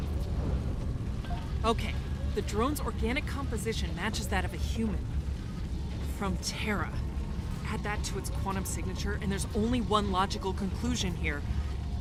Okay, the drone's organic composition matches that of a human. From Terra. Add that to its quantum signature, and there's only one logical conclusion here.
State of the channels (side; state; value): both; identical; correlation 1.00